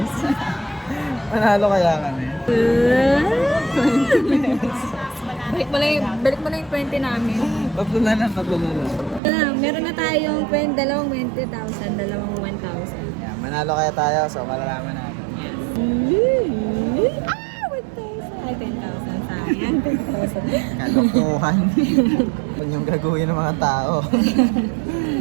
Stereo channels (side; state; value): left; drops out; at 9.2 s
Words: Manalo kaya kami. Balik mo na yung 20 namin. Tatlo na lang. Meron na tayong dalawang 20,000, dalawang 1,000. Yeah, manalo kaya tayo, so malalaman natin. Ay, 10,000 sayang. 10,000. Kalokohan. Kung yung gagawin ng mga tao.